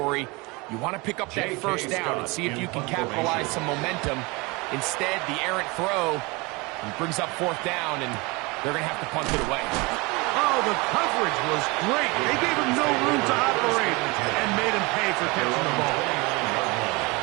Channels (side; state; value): left; quieter; 25.9 dB